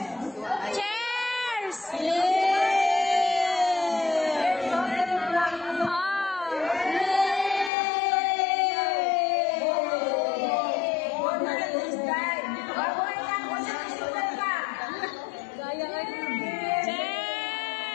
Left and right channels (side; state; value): right; drops out; at 7.7 s